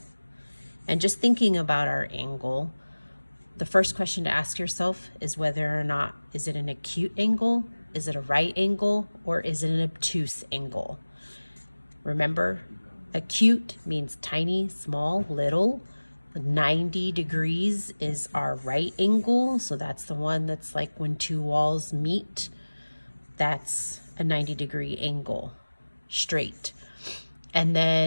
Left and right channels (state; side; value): inverted; both; correlation -1.00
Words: And just thinking about our angle, the first question to ask yourself is whether or not, is it an acute angle, is it a right angle, or is it an obtuse angle? Remember, acute means tiny, small, little. 90 degrees is our right angle, so that's the one that's like when two walls meet. That's a 90-degree angle, straight. And